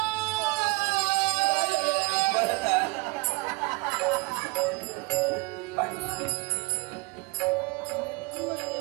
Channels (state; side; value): quieter; left; 26.1 dB